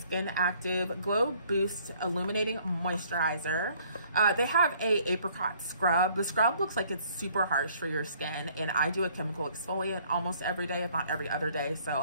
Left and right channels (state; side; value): inverted; both; correlation -0.60